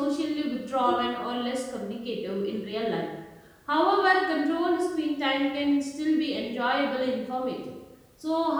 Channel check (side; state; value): both; identical; correlation 1.00